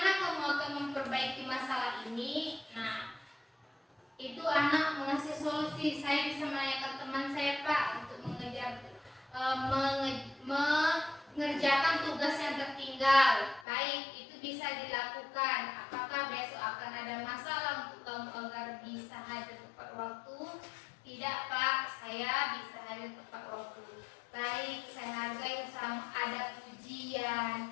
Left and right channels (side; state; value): right; drops out; at 13.7 s